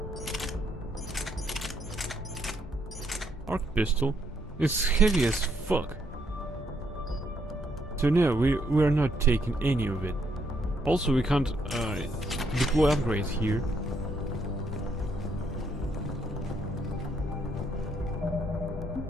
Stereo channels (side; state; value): both; normal; correlation 0.73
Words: Arc pistol is heavy as fuck. So no, we're not taking any of it. Also, we can't deploy upgrades here.